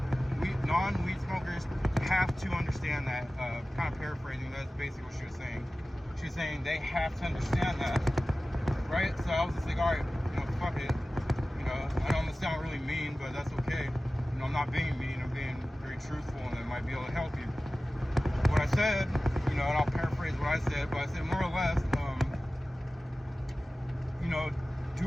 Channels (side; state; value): both; normal; correlation 0.96